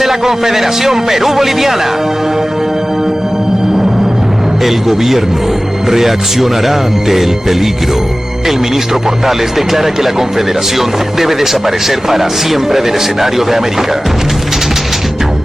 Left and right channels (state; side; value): normal; both; correlation 0.97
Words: la Confederación Perú-Boliviana. El gobierno reaccionará ante el peligro. El ministro Portales declara que la Confederación debe desaparecer para siempre del escenario de América.